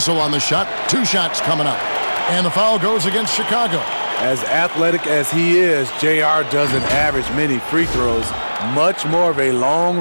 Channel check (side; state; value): both; inverted; correlation -1.00